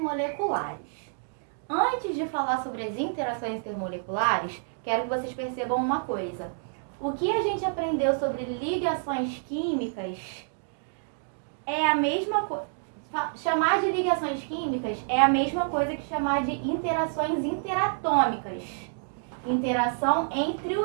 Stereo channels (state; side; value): silent; left; digital silence